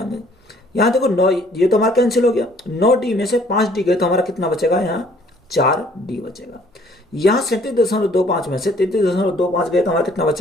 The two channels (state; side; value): normal; both; correlation 0.59